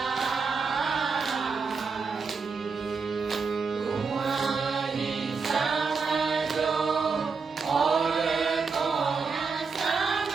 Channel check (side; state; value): left; quieter; 5.0 dB